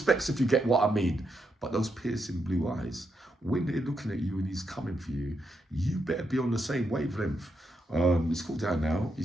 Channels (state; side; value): normal; both; correlation 0.82